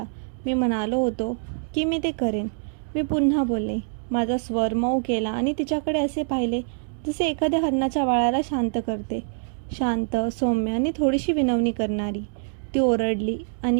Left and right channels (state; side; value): silent; left; digital silence